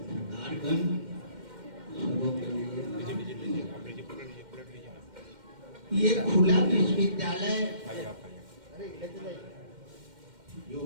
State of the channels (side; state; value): left; late; 2.1 ms